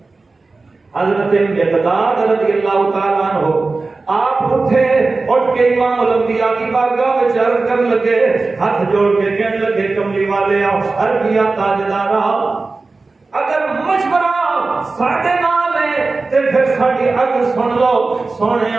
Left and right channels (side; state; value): left; quieter; 3.7 dB